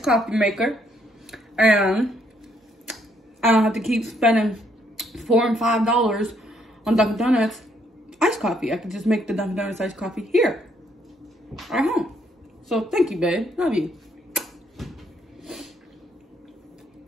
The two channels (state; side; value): normal; both; correlation 0.71